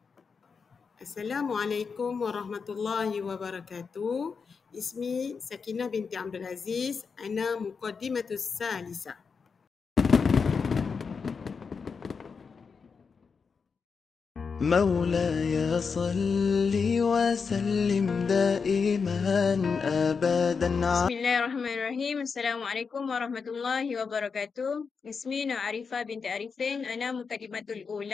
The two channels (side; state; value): right; quieter; 5.5 dB